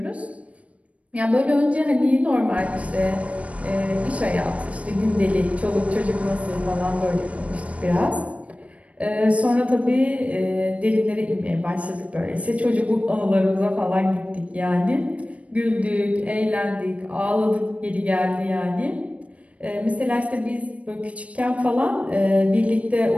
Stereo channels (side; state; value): left; late; 0.065 ms